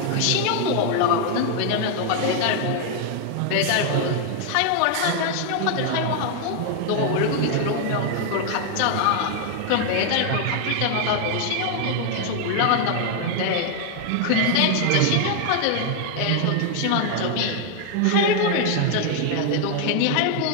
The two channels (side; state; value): both; different; correlation 0.00